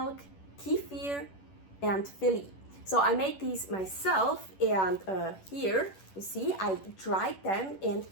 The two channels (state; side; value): late; right; 11 ms